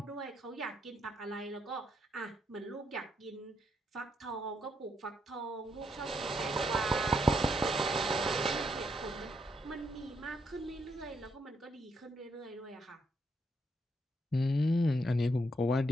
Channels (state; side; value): normal; both; correlation 0.77